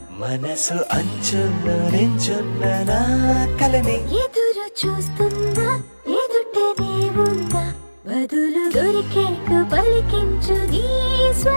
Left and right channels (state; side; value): inverted; both; correlation -1.00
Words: మనసు అంచున్న నించున్న నా కలని ఎదురు చూస్తుందా ఎదుటనే ఉందా బదులు దొరికేట్టు పలికించు నీ